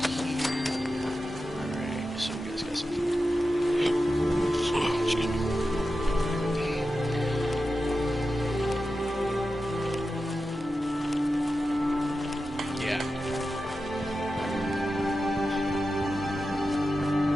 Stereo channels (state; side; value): normal; both; correlation 0.92